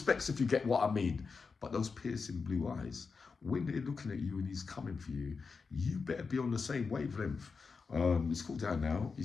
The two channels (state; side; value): quieter; right; 4.9 dB